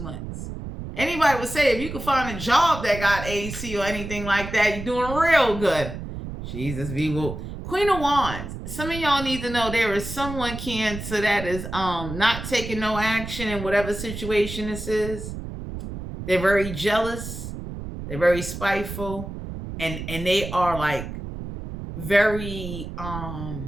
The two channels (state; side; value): noise; right; rumble, 8 dB below the sound